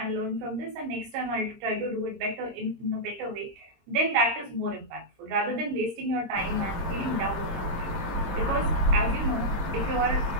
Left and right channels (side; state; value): left; late; 20 ms